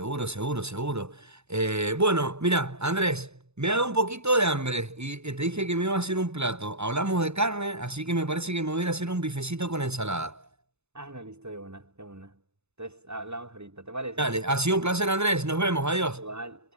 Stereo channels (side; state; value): left; late; 0.81 ms